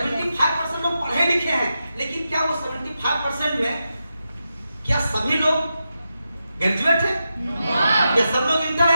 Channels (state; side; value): inverted; both; correlation -0.88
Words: लोग पढ़े लिखे हैं, लेकिन क्या वो 75% में क्या सभी लोग ग्रेजुएट है? क्या सब लोग इंटर